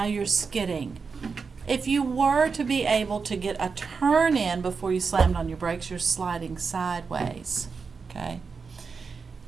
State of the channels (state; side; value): quieter; left; 5.1 dB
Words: you're skidding. If you were to be able to get a turn in before you slammed on your brakes, you're sliding sideways, okay?